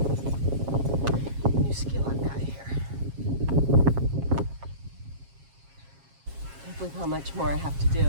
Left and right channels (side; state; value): left; late; 7.4 ms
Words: new skill I've got here. Can't believe how much more I have to